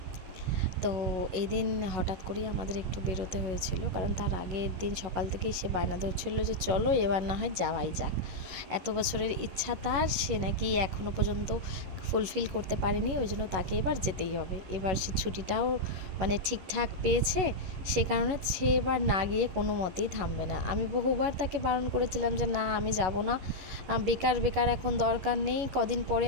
তো এই দিন হঠাৎ করেই আমাদের একটু বেরোতে হয়েছিল, কারণ তার আগের দিন সকাল থেকেই সে বায়না ধরছিল যে চলো এবার না হয় যাওয়াই যাক। এত বছরের ইচ্ছা তার, সে নাকি এখনও পর্যন্ত ফুলফিল করতে পারেনি, ওই জন্য তাকে এবার যেতেই হবে। এবার সে ছুটিটাও মানে ঠিকঠাক পেয়েছে, সে কারণে সে এবার না গিয়ে কোনো মতেই থামবে না। আমি বহুবার তাকে বারণ করেছিলাম যে না, আমি যাব না, বেকার বেকার এখন দরকার নেই, কদিন পরে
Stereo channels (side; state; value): left; late; 11 ms